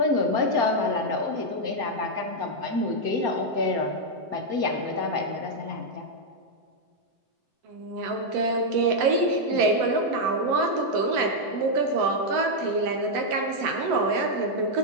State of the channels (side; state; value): left; late; 7.8 ms